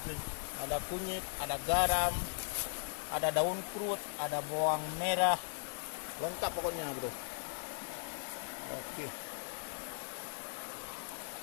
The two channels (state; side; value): silent; right; digital silence